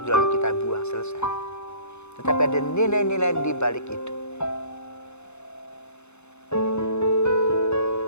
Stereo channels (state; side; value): late; right; 0.81 ms